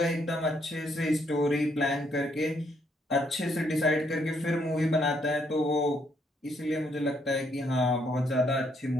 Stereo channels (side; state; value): both; normal; correlation 0.72